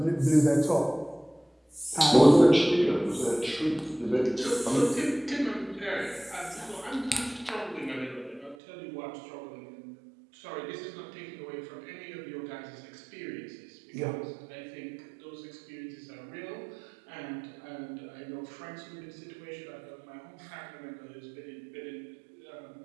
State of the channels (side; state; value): left; drops out; at 8.6 s